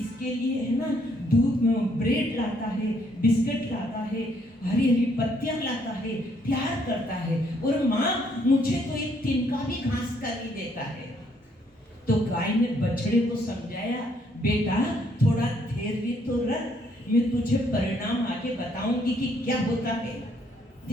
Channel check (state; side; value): normal; both; correlation 0.69